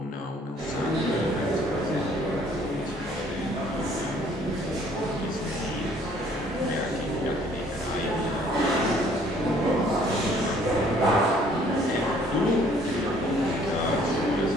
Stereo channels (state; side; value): normal; both; correlation 0.59